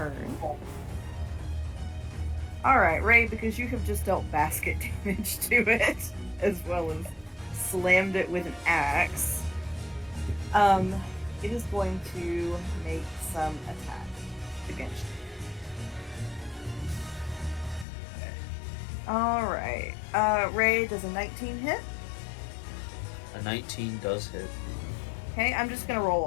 All right, Ray, because you have just dealt basket damage to it, as well as slammed it with an axe. It is going to make some attacks against you. Alright. Ray, does a 19 hit? A 19 does hit. Okay, I'm just gonna roll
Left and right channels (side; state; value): right; drops out; at 17.9 s